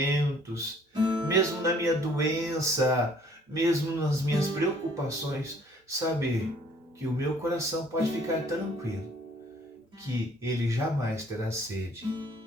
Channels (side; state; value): both; normal; correlation 0.58